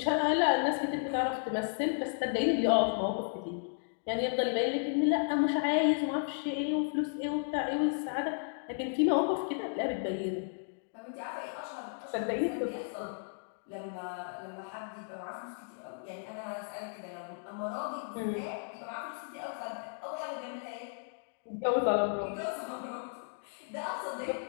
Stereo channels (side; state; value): right; silent; digital silence